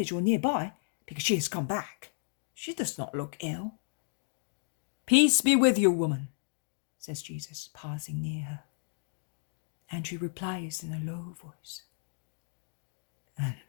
or nearby, because she has come back. She does not look ill." "Peace be with you, woman," says Jesus, passing near her. And she replies in a low voice, "And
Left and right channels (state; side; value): silent; right; digital silence